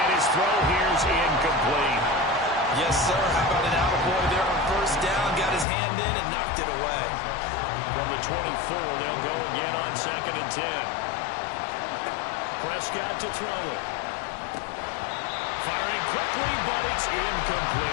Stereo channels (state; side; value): drops out; right; at 5.7 s